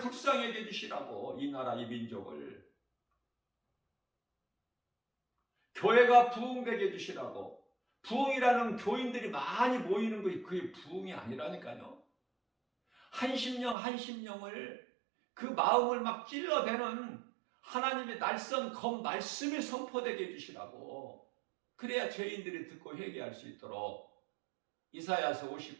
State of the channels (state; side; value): drops out; left; at 13.8 s